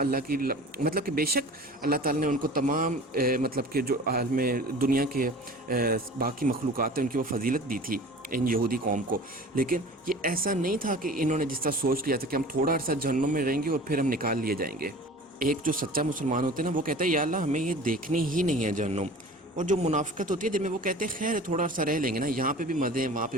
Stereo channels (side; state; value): both; normal; correlation 0.41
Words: کی مطلب کہ بے شک اللہ تعالیٰ نے ان کو تمام مطلب کہ جو عالم دنیا کے باقی مخلوقات ہیں ان کی وہ فضیلت دی تھی ان یہودی قوم کو، لیکن یہ ایسا نہیں تھا کہ انہوں نے جس طرح سوچ لیا تھا کہ ہم تھوڑا عرصہ جہنم میں رہیں گے اور پھر ہم نکال لیے جائیں گے۔ ایک جو سچا مسلمان ہوتے ہیں نا وہ کہتا ہے یا اللہ ہمیں یہ دیکھنی ہی نہیں ہے جہنم، اور جو منافقت ہوتی ہے جن میں وہ کہتے ہیں خیر تھوڑا عرصہ رہ لیں گے نا، یہاں پہ بھی مزے ہیں وہاں پہ